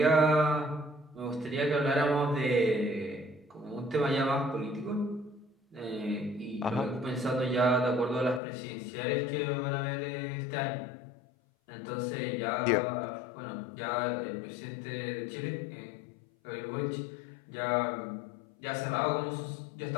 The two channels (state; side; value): drops out; right; at 8.4 s